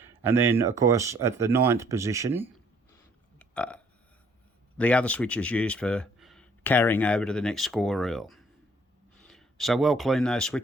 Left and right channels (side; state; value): both; normal; correlation 0.62